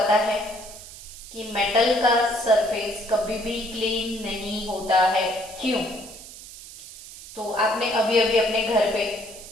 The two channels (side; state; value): right; noise; hiss, 15 dB below the sound